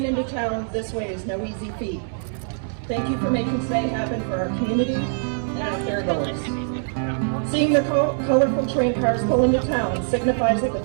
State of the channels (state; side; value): silent; left; digital silence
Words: into town this way is no easy feat. Thank you for making today happen for our community and our fairgoers. Seeing the colorful train cars pull into town signifies that the